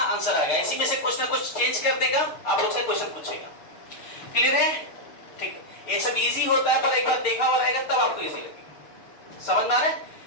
आ गया। इसी में से कुछ ना कुछ चेंज कर देगा, आप लोग से क्वेश्चन पूछेगा। क्लियर है, ठीक है। ये सब इजी होता है, पर एक बार देखा हुआ रहेगा तब आपको इजी लगेगा, समझ में आ रहा है।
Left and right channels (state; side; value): late; right; 6.6 ms